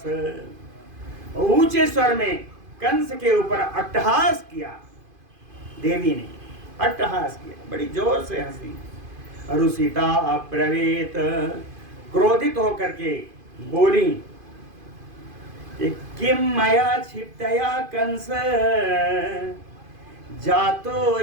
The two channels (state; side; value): late; left; 2.5 ms